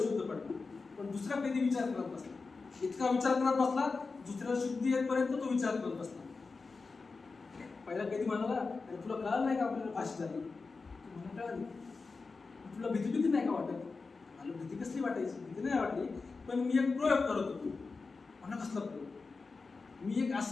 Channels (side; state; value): right; quieter; 4.2 dB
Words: पडला, पण दुसरा कैदी विचार करत बसला. इतका विचार करत बसला, दुसऱ्याला शुद्धी येईपर्यंत तो विचार करत बसला. पहिला कैदी म्हणाला, अरे तुला कळलं नाही का आपल्याला फाशी झाली? मला कळाली. तुला भीती नाही का वाटत? मला भीती कसली वाटायची? भीती नाही वाटली, पण मी एक प्रयोग करत होतो. म्हणा कसला प्रयोग? मी एक